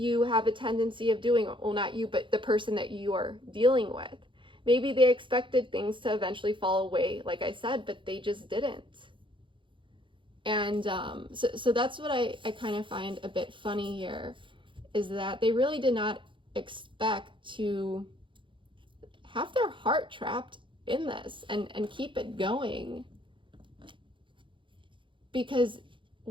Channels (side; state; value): left; late; 0.24 ms